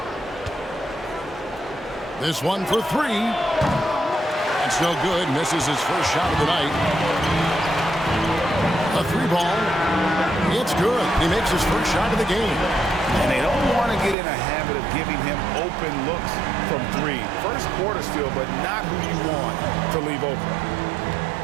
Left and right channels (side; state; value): left; drops out; at 14.2 s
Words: This one for 3. It's no good. Misses his first shot of the night. A 3-ball. It's good. He makes his first shot of the game. And they don't want to get in a habit of giving him open looks from 3. First quarter still, but not who you want to leave open.